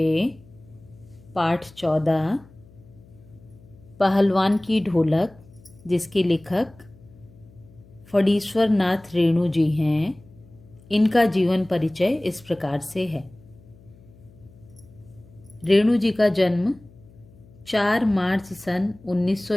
पाठ 14 पहलवान की ढोलक, जिसके लेखक फणीश्वर नाथ रेणु जी हैं, इनका जीवन परिचय इस प्रकार से है। रेणु जी का जन्म 4 मार्च सन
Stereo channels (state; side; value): noise; left; hum, 25 dB below the sound